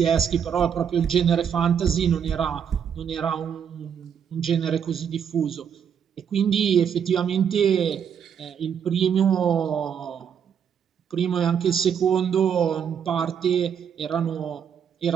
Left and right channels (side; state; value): left; quieter; 7.8 dB